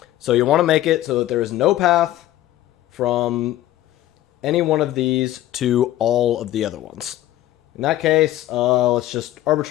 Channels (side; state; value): right; quieter; 14.2 dB